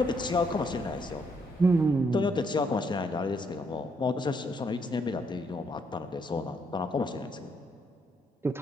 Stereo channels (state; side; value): normal; both; correlation 0.73